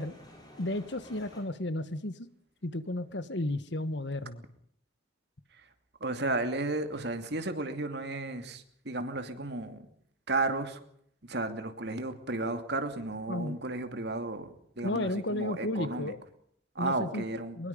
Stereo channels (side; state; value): both; normal; correlation 0.14